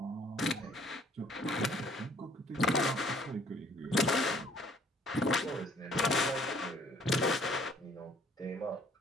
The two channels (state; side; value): normal; both; correlation 0.59